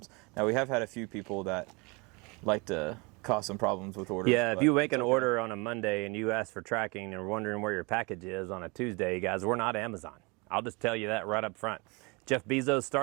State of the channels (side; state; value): left; quieter; 28.3 dB